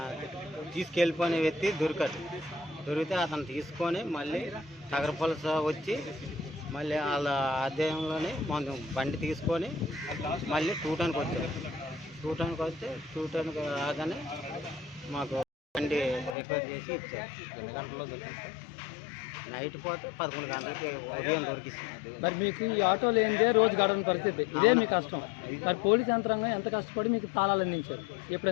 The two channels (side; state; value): right; drops out; at 16.4 s